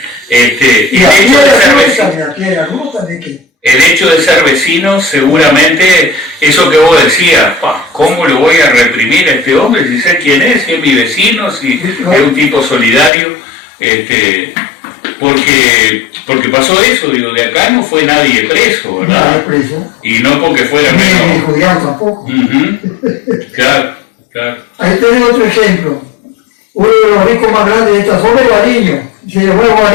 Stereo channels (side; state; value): right; drops out; at 13.1 s